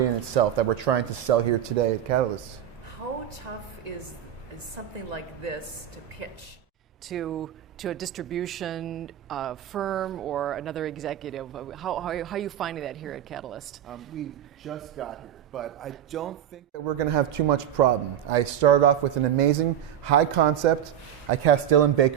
in itself that we're trying to sell here today at Catalyst. How tough is something like this to pitch to a distribution firm or another executive? How are you finding that here at Catalyst? We just got here, but I don't think that we're going to have too much problem. I started off with an amazing high concept. I cast Dylan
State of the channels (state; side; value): quieter; left; 10.3 dB